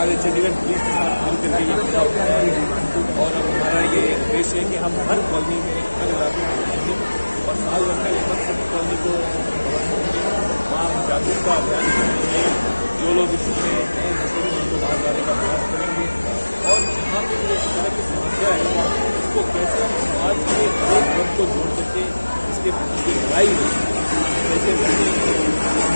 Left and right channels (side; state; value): both; inverted; correlation -1.00